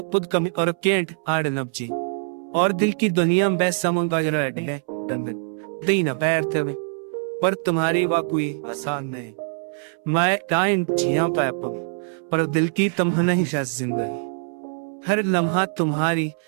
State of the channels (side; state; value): left; silent; 63 dB below the other